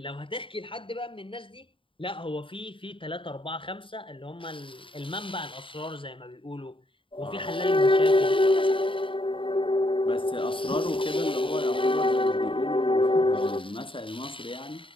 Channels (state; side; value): late; right; 0.25 ms